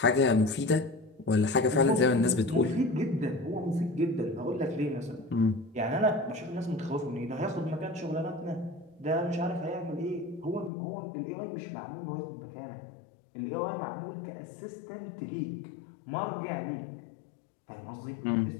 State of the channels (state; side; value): drops out; right; at 10.7 s